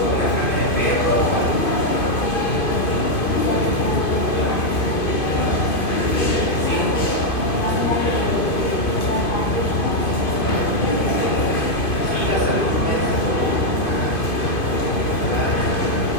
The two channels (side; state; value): right; late; 2.5 ms